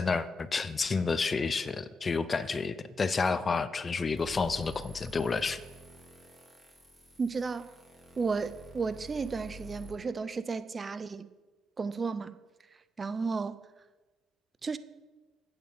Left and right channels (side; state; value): both; normal; correlation 0.86